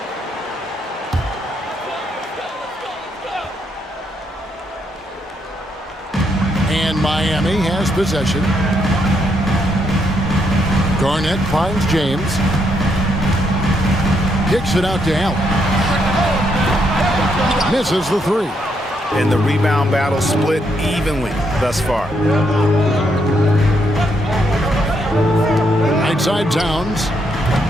And Miami has possession. Garnett finds James. Kicks it out to Allen. Misses the 3. And the rebound battle split evenly thus far. Right side Towns.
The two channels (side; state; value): both; normal; correlation 0.76